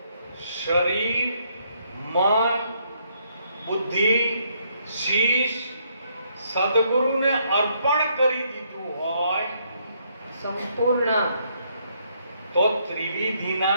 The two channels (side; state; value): both; inverted; correlation -0.72